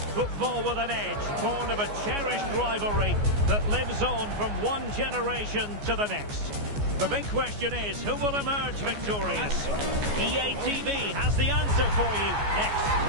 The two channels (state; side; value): late; left; 14 ms